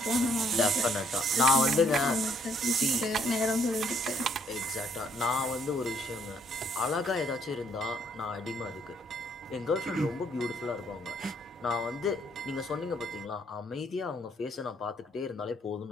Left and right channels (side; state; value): both; normal; correlation 0.67